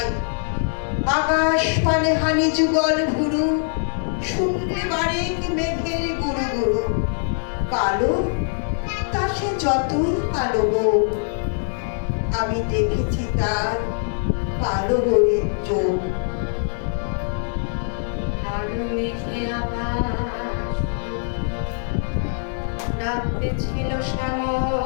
আকাশ পানে হানি যুগল ভুরু, শুনলে বারেক মেঘের গুরু গুরু। কালো তা সে যতই কালো হোক, আমি দেখেছি তার কালো হরিণ চোখ। কালো মেঘে আকাশ ডাকতে ছিল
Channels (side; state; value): right; silent; digital silence